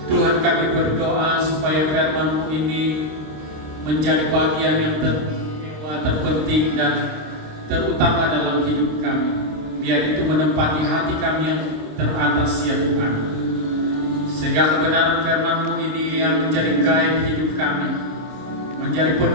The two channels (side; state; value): left; late; 26 ms